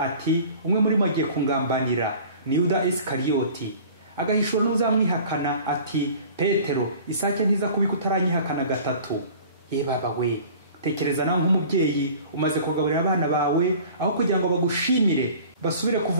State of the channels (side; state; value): both; inverted; correlation -0.45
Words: ati, umwe muri bo agiye kungambanira, ni Yuda Isikariyoti. Agahishura n'uzamwihakana ati, Petero, isake ntiza kubika utaranyihakana gatatu. Ye baba we, tekereza nawe nk'umubyeyi umaze kugaburira abana bawe, aho kugira ngo bagushimire basubire